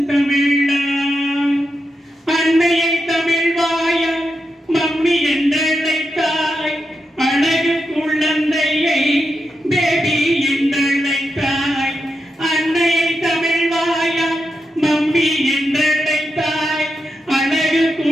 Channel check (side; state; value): both; normal; correlation 0.87